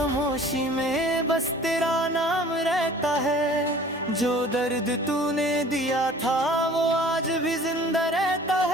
में बस तेरा नाम रहता है। जो दर्द तूने दिया था वो आज भी जिंदा रहता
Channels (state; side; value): normal; both; correlation 0.48